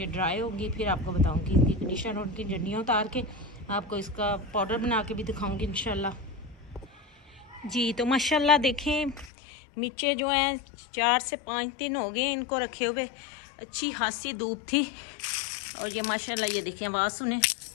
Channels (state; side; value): drops out; right; at 9.3 s